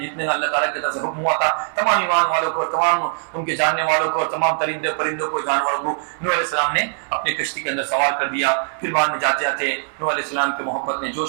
جتنے اللہ تعالیٰ کی طرف سے حکم ہوا تھا تمام ایمان والوں کو تمام ان کے جاننے والوں کو تمام ترندے پرندوں کو جانوروں کو نوح علیہ السلام نے اپنی کشتی کے اندر سوار کر دیا. پھر بعد میں جاتے جاتے نوح علیہ السلام کی محبت نے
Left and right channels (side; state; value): left; silent; 58 dB below the other